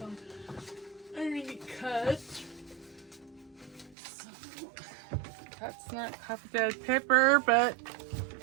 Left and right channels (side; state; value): left; drops out; at 4.0 s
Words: already cut. So, that's not coffee dyed paper, but